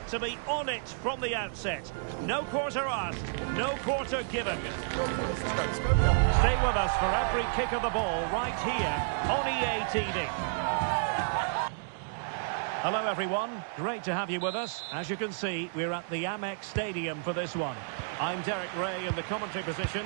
to be on it from the outset. No quarter asked, no quarter given. Stay with us for every kick of the ball right here on EA TV. Hello everyone, great to have you with us. As you can see, we're at the Amex Stadium for this one. I'm Derek Ray in the commentary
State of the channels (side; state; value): left; silent; digital silence